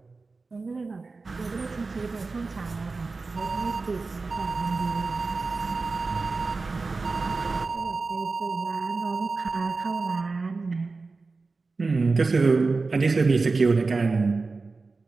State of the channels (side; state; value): left; quieter; 3.9 dB